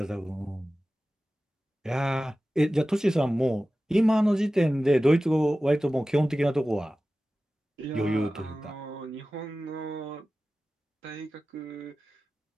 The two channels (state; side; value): normal; both; correlation 0.96